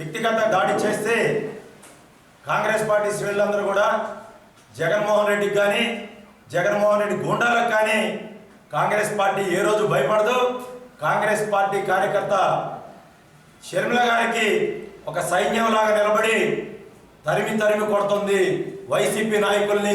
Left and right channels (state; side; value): identical; both; correlation 1.00